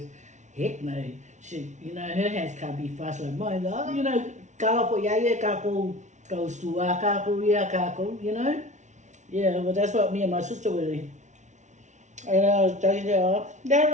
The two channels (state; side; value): late; left; 0.35 ms